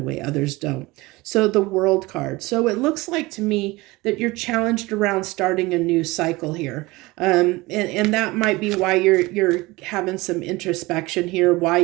way others don't. So the World card. So it looks like to me that you're challenged around starting a new cycle here. And that might be why you're having some introspection here, why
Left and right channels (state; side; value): quieter; left; 21.5 dB